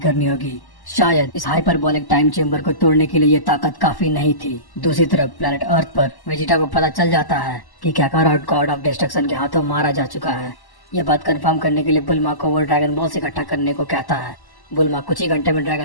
करनी होगी। शायद इस हाइपरबोलिक टाइम चेम्बर को तोड़ने के लिए ये ताकत काफी नहीं थी। दूसरी तरफ प्लेनेट अर्थ पर वेजिटा को पता चल जाता है कि काकारोट गॉड ऑफ डिस्ट्रक्शन के हाथों मारा जा चुका है। यह बात कंफर्म करने के लिए बुल्मा को वो ड्रैगन बॉल्स इकट्ठा करने को कहता है। बुल्मा कुछ ही घंटे में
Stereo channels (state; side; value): late; right; 1.1 ms